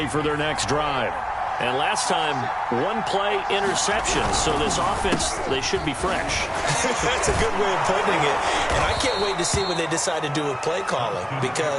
for their next drive. And last time, 1-play interception. So this offense, they should be fresh. That's a good way of putting it. And I can't wait to see what they decide to do with play calling.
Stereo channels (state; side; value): identical; both; correlation 1.00